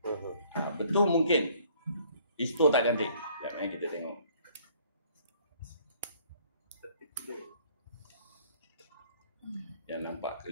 Betul mungkin histo tak cantik. Sekejap kita tengok. Yang nampak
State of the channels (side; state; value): both; inverted; correlation -0.59